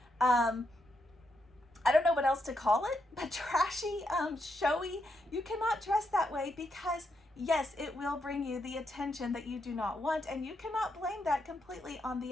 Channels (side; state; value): both; normal; correlation 0.80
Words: I don't know what else to call it, but trashy, showy. You cannot dress that way, because yes, it will bring you the attention that you do not want, and you cannot blame that completely on the